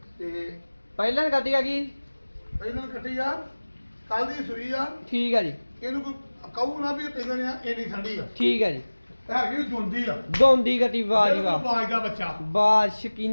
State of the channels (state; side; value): inverted; both; correlation -1.00